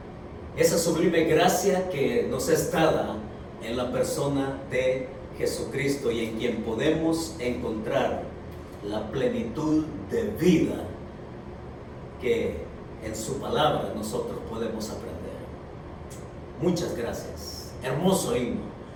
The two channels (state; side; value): identical; both; correlation 1.00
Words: Esa sublime gracia que nos es dada en la persona de Jesucristo y en quien podemos encontrar la plenitud de vida que en su palabra nosotros podemos aprender. Muchas gracias. Hermoso himno,